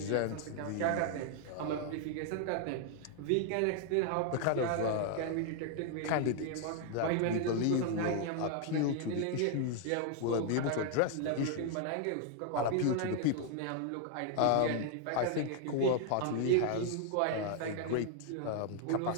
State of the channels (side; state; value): both; different; correlation 0.00